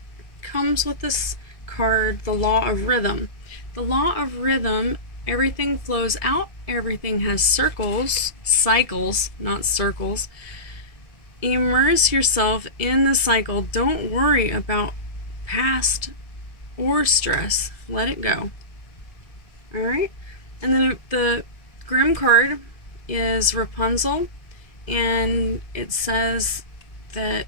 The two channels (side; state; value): right; late; 1.7 ms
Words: comes with this card, the Law of Rhythm. The Law of Rhythm, everything flows out, everything has cycles, not circles. Immerse yourself in the cycle. Don't worry about past or stress. Let it go. Alright? And then the Grimm card is Rapunzel, and it says that